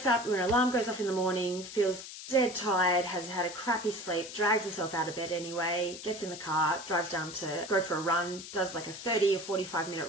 up when her alarm goes off in the morning, feels dead tired, has had a crappy sleep, drags herself out of bed anyway, gets in the car, drives down to go for a run, does a 30 or 45 minute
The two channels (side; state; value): left; noise; hiss, 12 dB below the sound